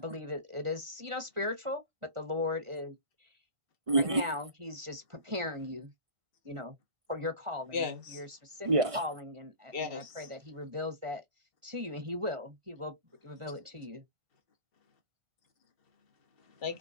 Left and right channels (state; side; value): late; left; 1.4 ms